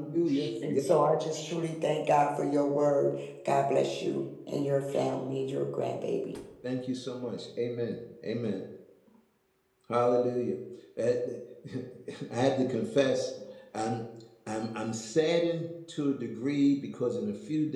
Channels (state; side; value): identical; both; correlation 1.00